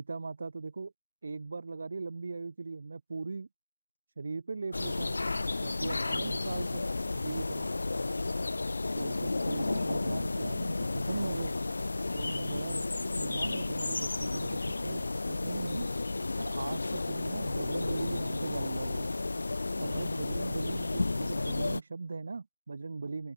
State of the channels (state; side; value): inverted; both; correlation -0.96